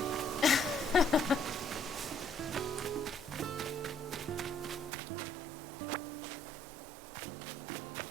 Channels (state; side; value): drops out; left; at 4.9 s